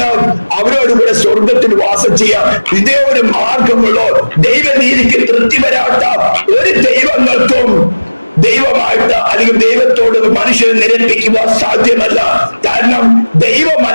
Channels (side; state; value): both; inverted; correlation -1.00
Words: അവരോട് കൂടെ സ്വർഗത്തിൽ വാസം ചെയ്യാം. ഇതേ ഒരു മാർഗമുള്ളൂ. ദൈവനീതിക്ക് തൃപ്തി വരാത്ത ഒരു ദൈവങ്ങൾക്കും ദൈവമായിട്ട് അല്ലെങ്കിൽ ദൈവത്തോട് മനുഷ്യനെ നിരപ്പിക്കുക സാധ്യമല്ല. കാരണം